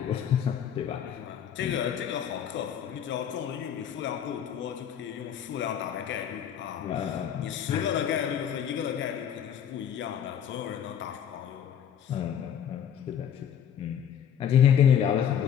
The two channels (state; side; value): quieter; right; 9.0 dB